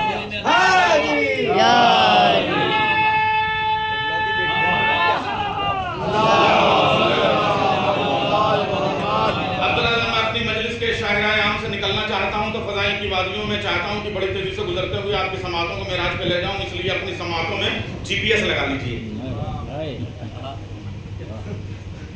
मैं चाहता हूं कि बड़ी तेजी से गुजरते हुए आपकी समातों को मेराज पे ले जाऊं, इसलिए अपनी समातों में जीपीएस लगा लीजिए।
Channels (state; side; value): identical; both; correlation 1.00